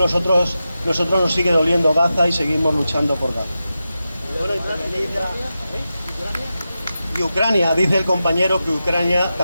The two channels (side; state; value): both; inverted; correlation -0.91